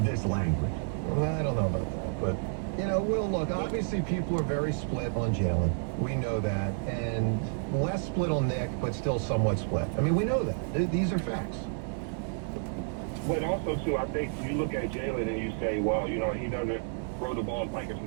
this language. Well, I don't know about that, but, Will, look, obviously people are very split on Jalen. We know that. And less split on Nick, but still somewhat split. I mean, we know that. These are facts. But also, too, I think you look at Jalen and you say, wow, he doesn't throw the ball like a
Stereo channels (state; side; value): silent; left; 58 dB below the other